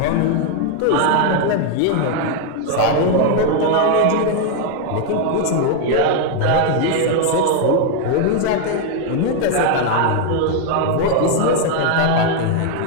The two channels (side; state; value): both; different; correlation 0.00